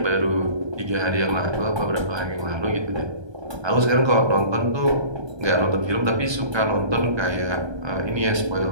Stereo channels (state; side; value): late; left; 1.3 ms